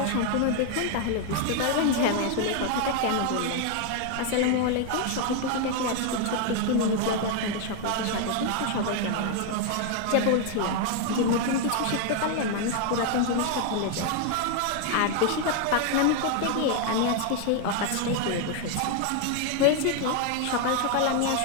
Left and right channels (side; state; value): both; different; correlation 0.01